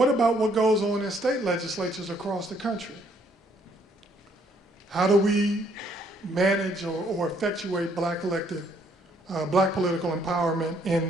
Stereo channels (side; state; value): both; normal; correlation 0.67